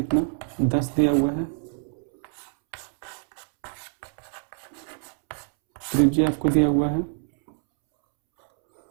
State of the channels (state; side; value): silent; left; 61 dB below the other